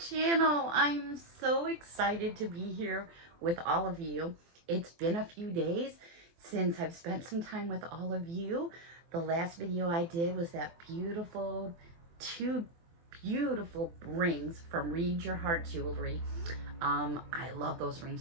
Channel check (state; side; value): late; left; 24 ms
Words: I'm so excited to be here with all of you. It's been a few days since I've spent some time with all of you. The last video I did was that two beautiful rings from Read Your Heart Jewelry. I love those